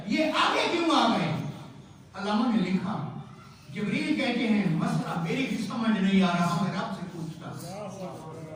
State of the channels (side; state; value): both; identical; correlation 1.00